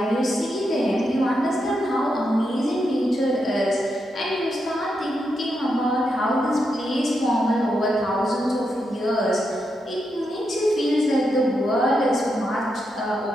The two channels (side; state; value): both; normal; correlation 0.84